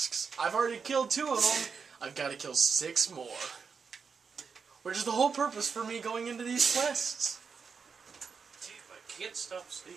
I've already killed 2 of them. I've got to kill 6 more. Which is the whole purpose for me going into these quests. Damn, I can't stop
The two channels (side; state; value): left; quieter; 5.7 dB